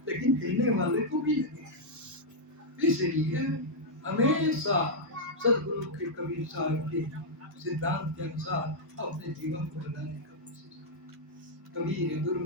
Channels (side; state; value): both; normal; correlation -0.05